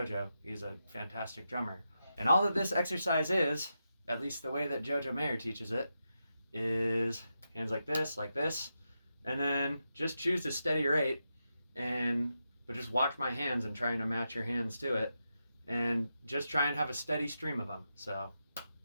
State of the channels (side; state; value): both; inverted; correlation -0.87